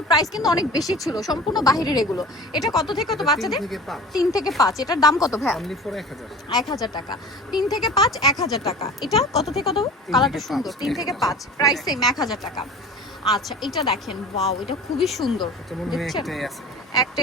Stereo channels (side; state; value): both; normal; correlation 0.39